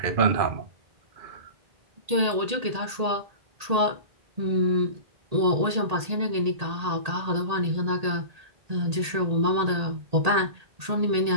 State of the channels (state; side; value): late; left; 1.8 ms